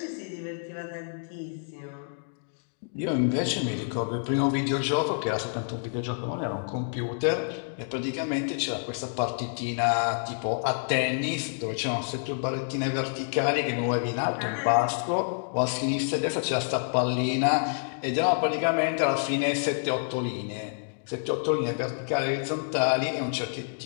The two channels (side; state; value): right; silent; digital silence